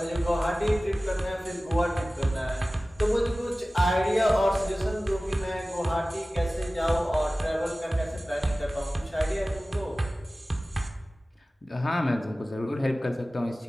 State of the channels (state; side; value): normal; both; correlation 0.97